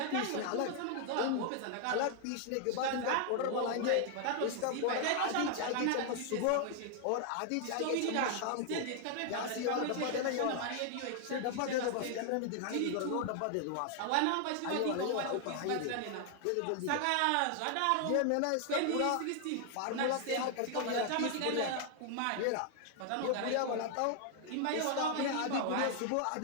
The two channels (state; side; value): different; both; correlation 0.00